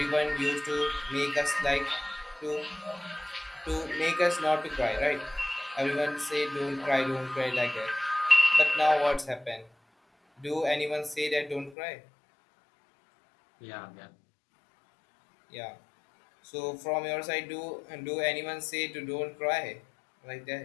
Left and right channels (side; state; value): right; drops out; at 11.8 s